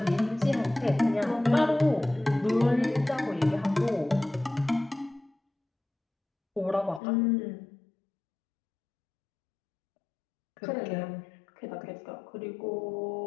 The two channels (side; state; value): right; drops out; at 7.0 s